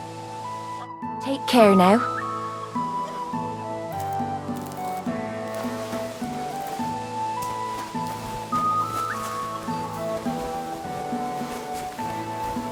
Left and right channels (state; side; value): identical; both; correlation 1.00